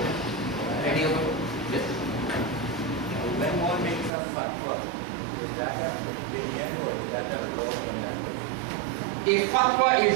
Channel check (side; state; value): left; drops out; at 4.1 s